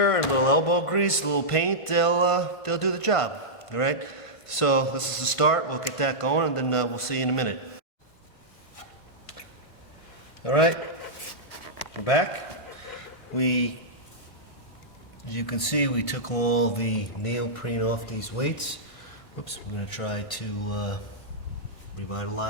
and a little elbow grease, a little paint, they'll do the job. All right. So this is the start. We'll get that going, and then we'll see you in a minute. All right. We're back. As you can see, we took all the neoprene off these weights. Oops. We're going to try to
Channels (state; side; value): late; right; 1.5 ms